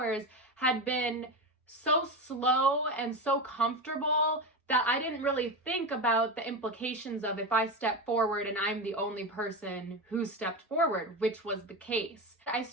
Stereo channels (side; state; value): both; normal; correlation 0.19